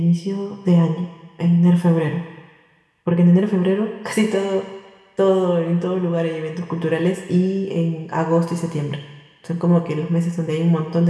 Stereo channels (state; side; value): identical; both; correlation 1.00